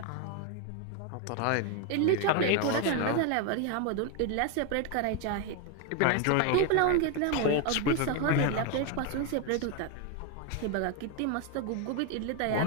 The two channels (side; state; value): both; different; correlation 0.01